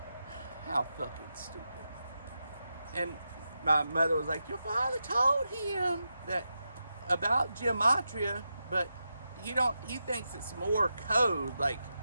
how fucking stupid. And my mother was like, your father told him that about gematria, but he thinks it's more code, like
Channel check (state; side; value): inverted; both; correlation -0.88